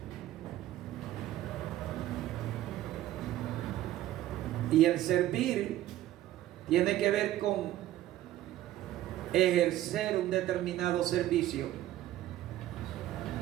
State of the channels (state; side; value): quieter; left; 14.0 dB